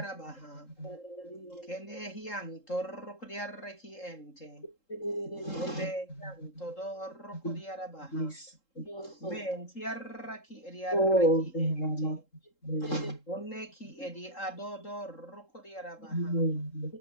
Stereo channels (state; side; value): late; right; 3.7 ms